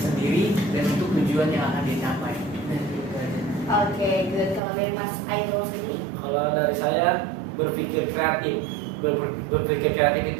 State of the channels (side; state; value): left; drops out; at 4.6 s